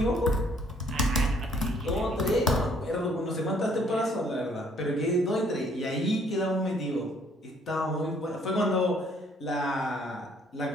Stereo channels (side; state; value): both; normal; correlation 0.63